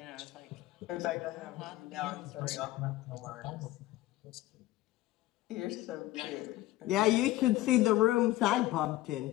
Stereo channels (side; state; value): right; quieter; 16.1 dB